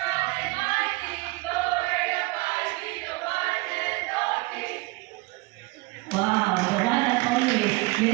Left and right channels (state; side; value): quieter; left; 24.1 dB